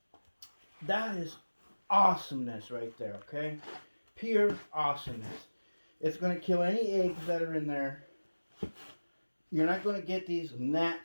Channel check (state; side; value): inverted; both; correlation -1.00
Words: That is awesomeness right there, okay? Pure awesomeness. It's going to kill any eggs that are in there. You're not going to get these